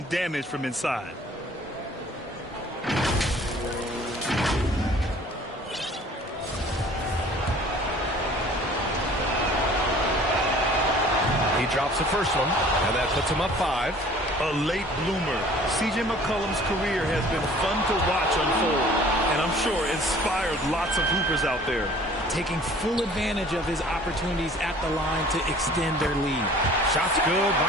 damage from inside. He drops the first one, and that puts him up 5. A late bloomer. C.J. McCollum's career has been fun to watch unfold, and I'm sure inspired lots of hoopers out there. Taking full advantage of his opportunities at the line to extend their lead. Shots good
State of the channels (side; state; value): both; normal; correlation 0.50